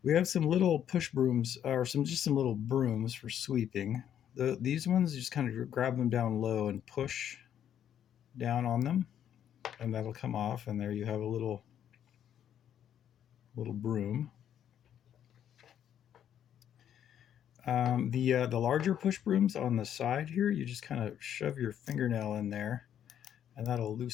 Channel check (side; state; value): right; quieter; 9.9 dB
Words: We have some little push brooms, or some little brooms for sweeping. These ones, you just kind of grab them down low and push down on them, and that'll come off, and there you have a little broom. The larger push brooms on the side here, you just kind of shove your fingernail in there, and that'll